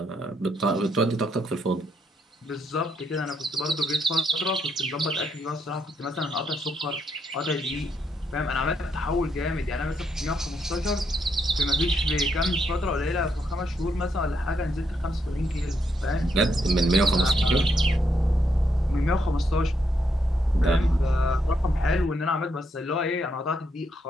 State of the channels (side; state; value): both; normal; correlation 0.77